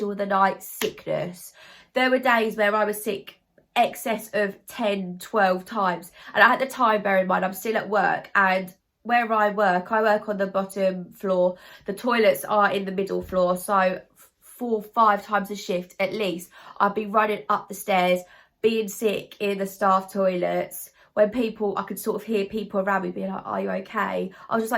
of the night sickness. There were days where I was sick excess of 10, 12 times. And at the time, bear in mind, I'm still at work, and where I work on the bottom floor. The toilets are in the middle floor, so 4, 5 times a shift at least, I'd be running up the stairs, being sick in the staff toilets. When people, I could sort of hear people around me being like, are you okay? I was just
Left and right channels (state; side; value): identical; both; correlation 1.00